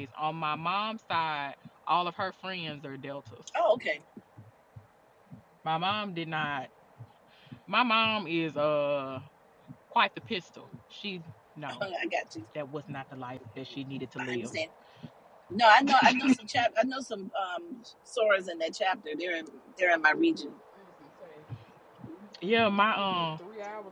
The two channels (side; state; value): both; identical; correlation 1.00